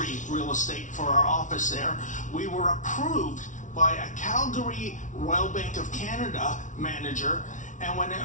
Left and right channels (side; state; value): right; late; 0.37 ms